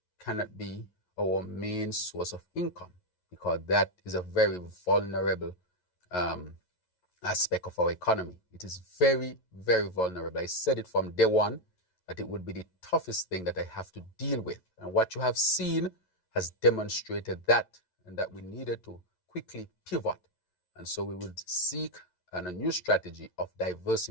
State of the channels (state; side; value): late; right; 11 ms